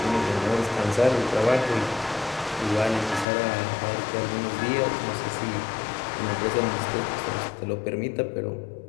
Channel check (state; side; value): drops out; right; at 3.2 s